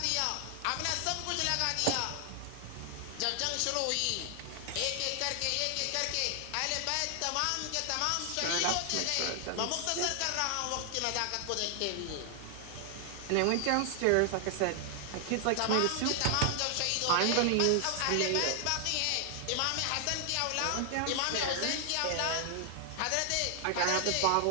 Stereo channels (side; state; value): both; different; correlation 0.00